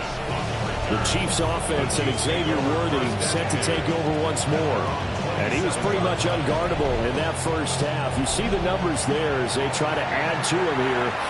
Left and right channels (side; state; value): both; identical; correlation 1.00